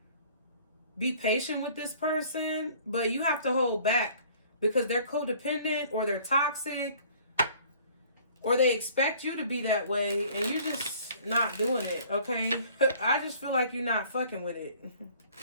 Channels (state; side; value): inverted; both; correlation -0.53